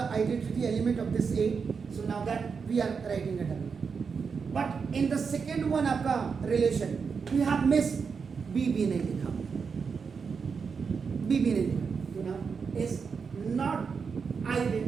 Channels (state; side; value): quieter; left; 5.7 dB